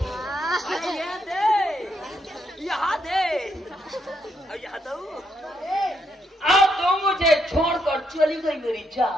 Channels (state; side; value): normal; both; correlation 0.77